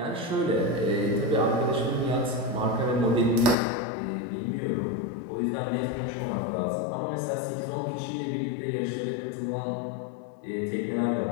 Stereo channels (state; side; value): drops out; right; at 3.6 s